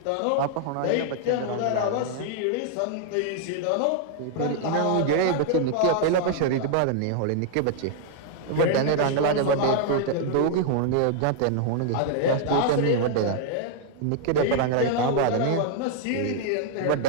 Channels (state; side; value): different; both; correlation 0.00